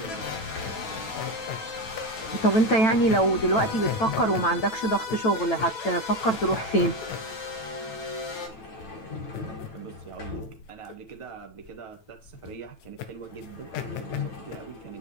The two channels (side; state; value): right; late; 9.1 ms